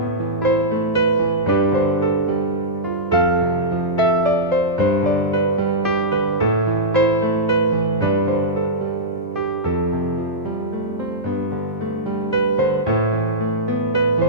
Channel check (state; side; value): normal; both; correlation -0.11